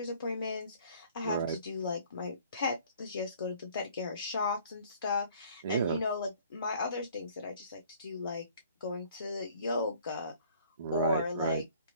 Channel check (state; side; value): inverted; both; correlation -0.55